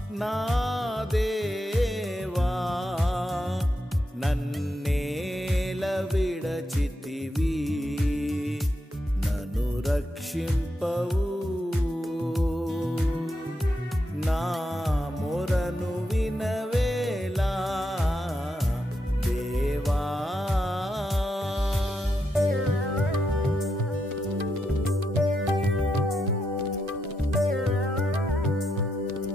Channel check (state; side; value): normal; both; correlation 0.83